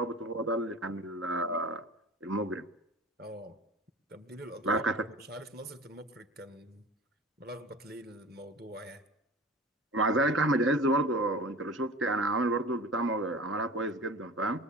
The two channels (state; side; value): normal; both; correlation 0.38